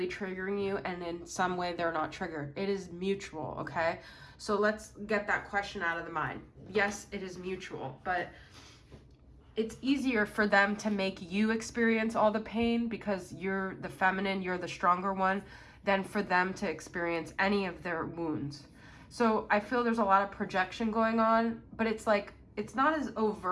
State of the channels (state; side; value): identical; both; correlation 1.00